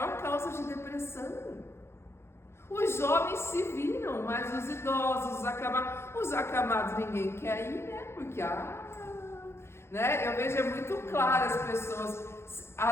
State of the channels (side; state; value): right; late; 0.12 ms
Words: causa de depressão. Os jovens se viram, mas os idosos, os acamados ninguém quer ir, né? Porque, né? Eu vejo muito claro as pessoas.